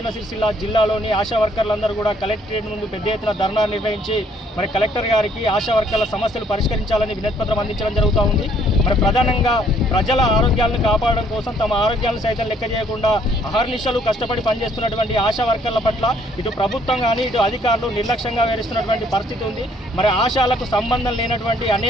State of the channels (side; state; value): both; normal; correlation 0.64